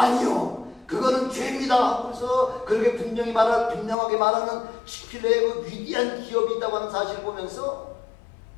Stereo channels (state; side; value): drops out; right; at 4.0 s